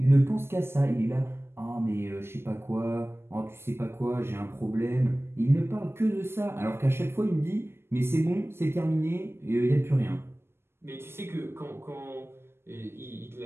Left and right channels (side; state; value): left; late; 0.12 ms